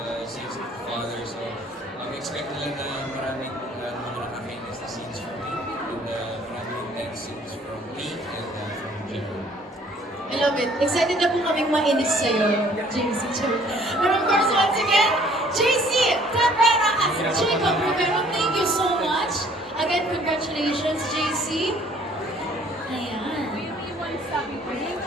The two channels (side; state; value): both; normal; correlation 0.58